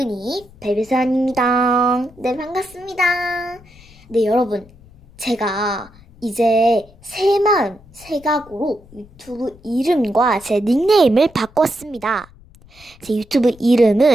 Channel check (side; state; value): left; noise; rumble, 25 dB below the sound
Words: 베베산입니다. 네, 반갑습니다. 네, 여러분. 제가 이제 새 각오로 유튜브 이름과 제 닉네임을 바꿨습니다. 제 유튜브